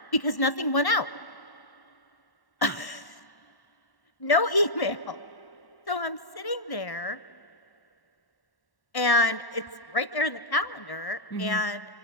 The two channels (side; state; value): right; late; 1.1 ms